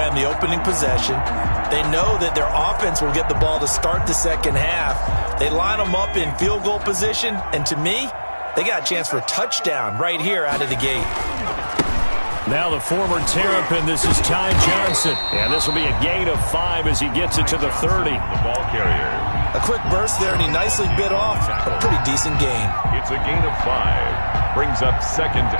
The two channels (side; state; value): both; inverted; correlation -1.00